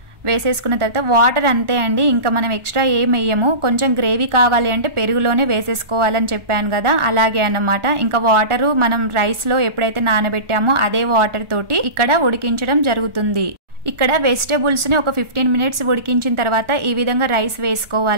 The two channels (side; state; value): left; late; 1.4 ms